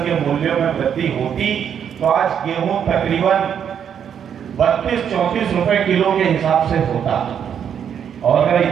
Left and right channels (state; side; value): quieter; left; 8.3 dB